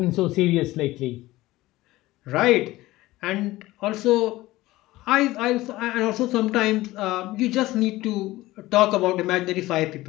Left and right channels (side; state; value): right; quieter; 17.9 dB